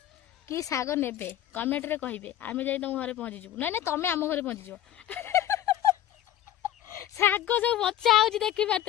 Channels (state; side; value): quieter; right; 12.3 dB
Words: कि साग नेबे कमेंट रे कहिबे। आमे जाई तुम घरे पहुंची जबु। नै नै तमे आम घरे पहुंची जबो। साग सब बच्चा आउची देखि